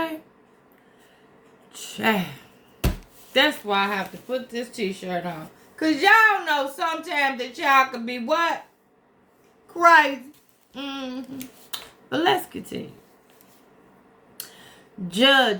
Chad. That's why I have to put this t-shirt on. Because y'all know sometimes that y'all can be what? Crazy. But let's continue.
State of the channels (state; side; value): identical; both; correlation 1.00